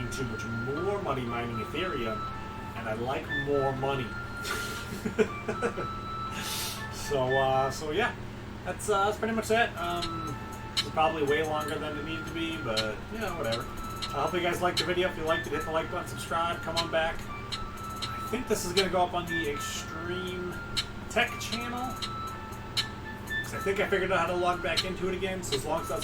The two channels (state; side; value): identical; both; correlation 1.00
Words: too much more money mining Ethereum, and I like more money. So yeah, that's pretty much it. It's probably way longer than it needed to be, but whatever. I hope you guys liked the video. If you liked it, hit the like button, subscribe, come on back. I think this is going to go up on the Extreme Tech channel. Vlogs. I think I figured out how to log back into it again, so as long as it